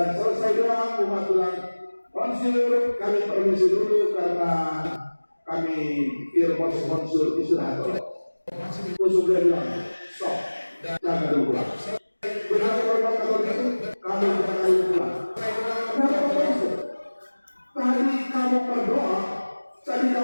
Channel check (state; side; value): inverted; both; correlation -1.00